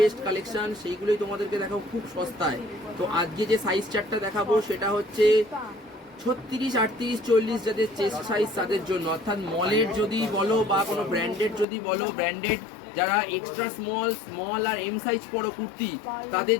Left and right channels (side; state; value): right; drops out; at 11.7 s